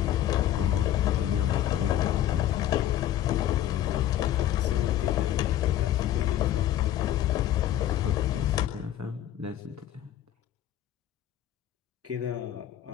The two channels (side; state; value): right; quieter; 12.1 dB